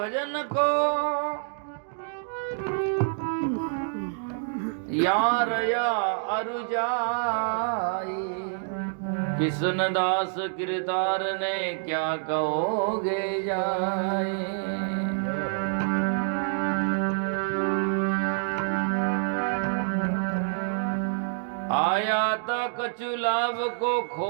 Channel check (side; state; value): left; silent; digital silence